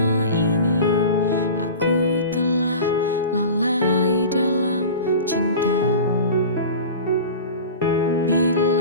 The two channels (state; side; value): inverted; both; correlation -0.34